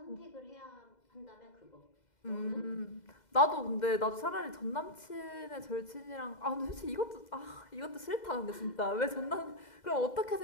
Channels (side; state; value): right; late; 2.0 ms